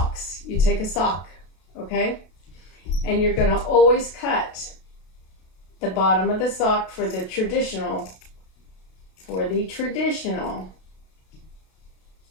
you take a sock, okay? And you're going to always cut the bottom of the sock for the traditional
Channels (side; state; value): right; late; 32 ms